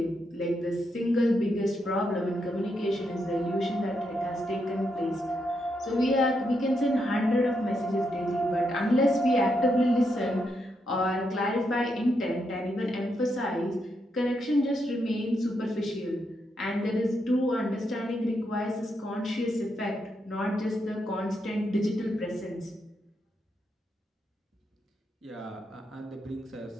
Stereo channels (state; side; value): normal; both; correlation 0.81